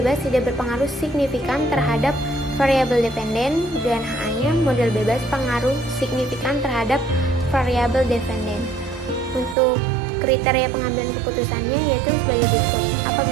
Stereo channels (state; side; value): drops out; left; at 9.6 s